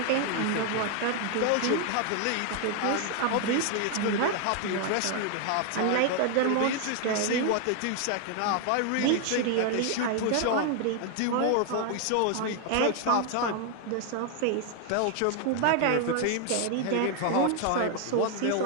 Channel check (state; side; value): different; both; correlation 0.00